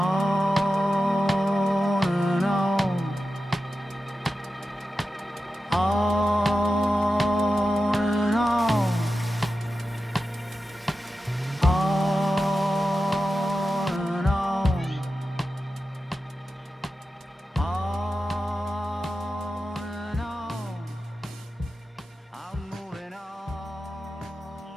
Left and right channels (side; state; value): both; normal; correlation 0.92